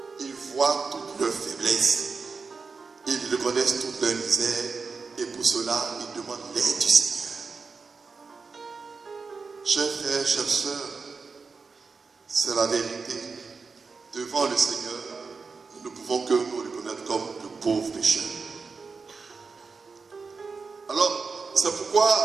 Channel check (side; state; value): left; quieter; 4.7 dB